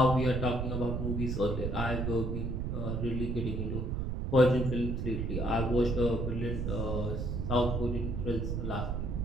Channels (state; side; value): noise; right; rumble, 1 dB below the sound